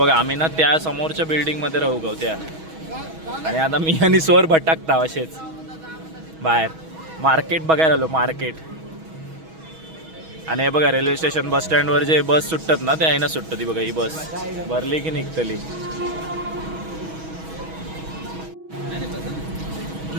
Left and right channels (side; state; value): left; late; 6.2 ms